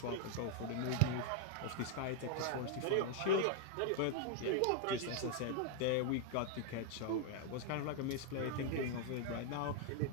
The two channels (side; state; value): both; different; correlation 0.00